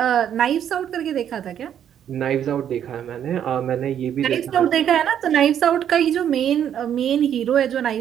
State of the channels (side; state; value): left; quieter; 9.6 dB